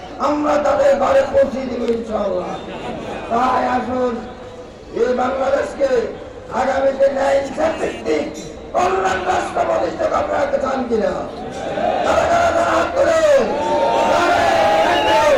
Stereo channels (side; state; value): both; identical; correlation 1.00